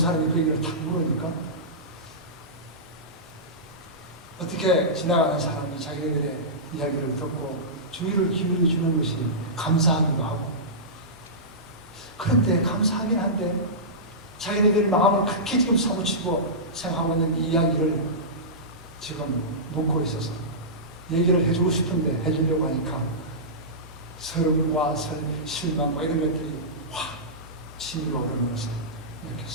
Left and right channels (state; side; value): normal; both; correlation -0.17